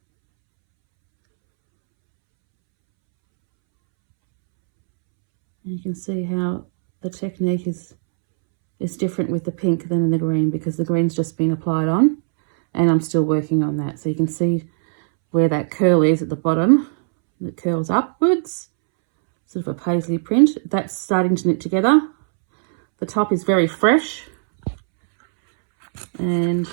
And you can see how the technique is different with the pink than in the green, because the green's just been applied on and I'm still working on that. So you can see where that curl is at the bottom. It curls upwards, sort of a paisley print. That's starting to knit together. The top is very fresh. And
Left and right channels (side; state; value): left; silent; 66 dB below the other